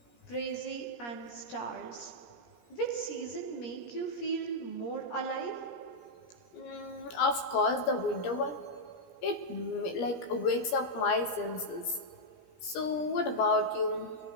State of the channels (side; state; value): right; late; 17 ms